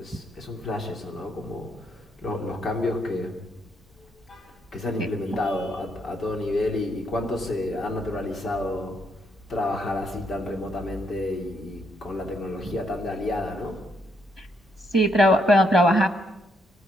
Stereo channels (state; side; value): normal; both; correlation 0.75